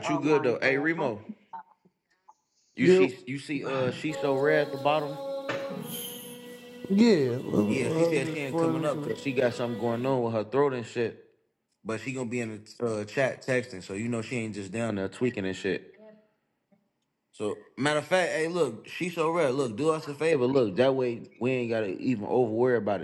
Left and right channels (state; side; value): identical; both; correlation 1.00